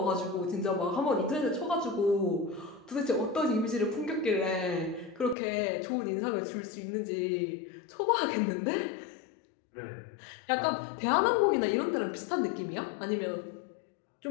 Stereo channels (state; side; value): drops out; right; at 5.4 s